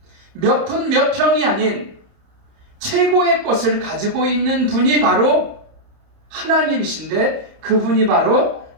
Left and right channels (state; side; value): late; left; 30 ms